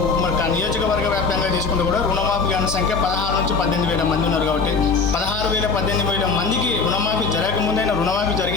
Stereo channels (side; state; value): right; quieter; 4.7 dB